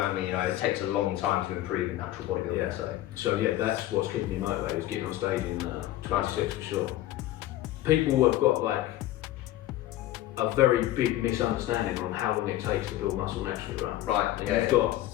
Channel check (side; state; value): right; quieter; 14.7 dB